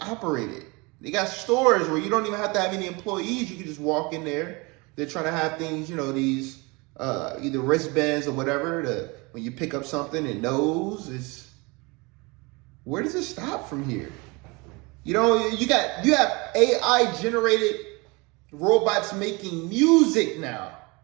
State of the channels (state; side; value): quieter; left; 26.6 dB